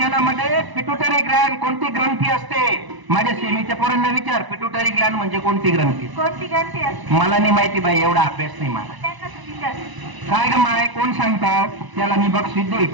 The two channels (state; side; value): late; left; 1.0 ms